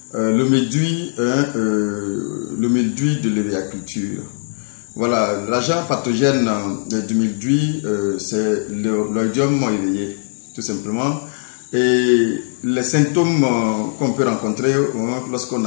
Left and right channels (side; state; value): right; silent; digital silence